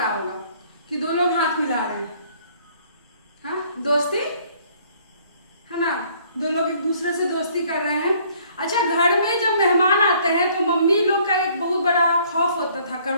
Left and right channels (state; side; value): inverted; both; correlation -0.60